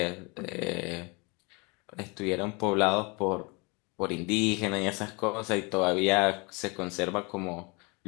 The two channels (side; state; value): right; quieter; 29.2 dB